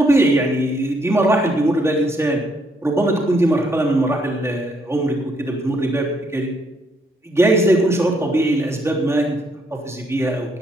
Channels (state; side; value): normal; both; correlation 0.72